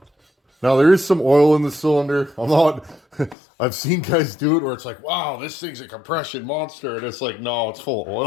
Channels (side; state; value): right; drops out; at 3.4 s